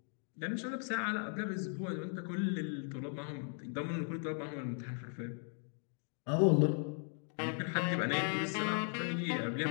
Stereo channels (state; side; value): silent; right; 53 dB below the other